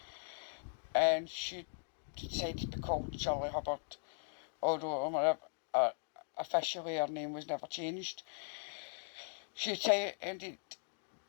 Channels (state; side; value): silent; right; digital silence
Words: and she decided to be called Shirley Hubbard, although officially her name was never changed. She attended